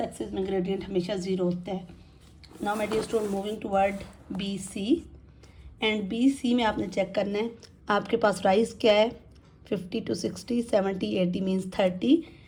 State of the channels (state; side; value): identical; both; correlation 1.00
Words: एक्सिस में ग्रेडियंट हमेशा 0 होता है. Now my dear student, moving toward B C. And B C में आपने चेक करना है आपके पास राइज क्या है 50 to 60, 70, 80 means 30.